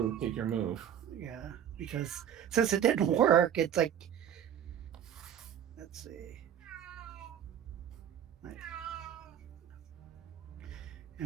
take your move. Yeah, because since it didn't work, it's like, let's see.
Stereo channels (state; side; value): quieter; left; 9.5 dB